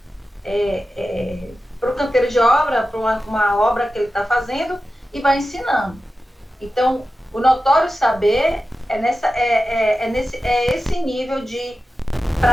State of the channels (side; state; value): both; normal; correlation 0.93